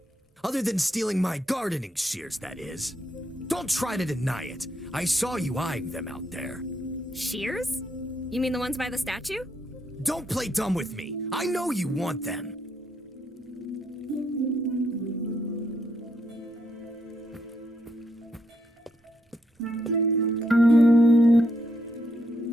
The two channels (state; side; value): normal; both; correlation 0.76